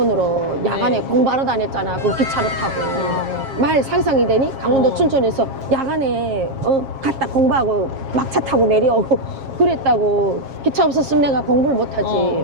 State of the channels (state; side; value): late; left; 7.4 ms